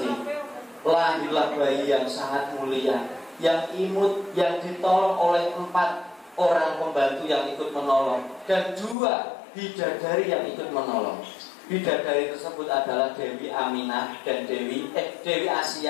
Lahirlah bayi yang sangat mulia, yang imut, yang ditolong oleh 4 orang pembantu yang ikut menolong dan 2 bidadari yang ikut menolong. Bidadari tersebut adalah Dewi Aminah dan Dewi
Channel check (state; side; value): drops out; right; at 9.0 s